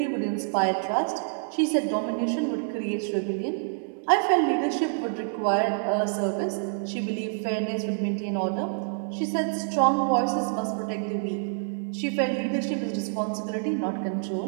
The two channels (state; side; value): silent; left; digital silence